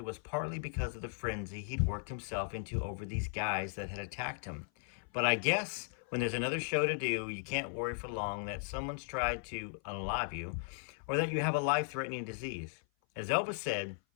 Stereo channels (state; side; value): silent; right; 53 dB below the other